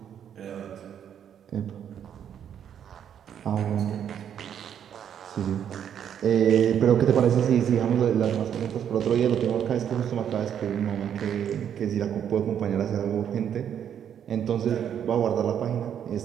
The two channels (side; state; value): left; quieter; 9.0 dB